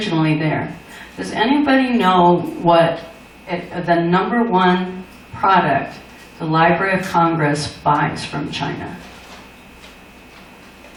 there. Does anybody know what the #1 product the Library of Congress buys from China?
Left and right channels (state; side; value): identical; both; correlation 1.00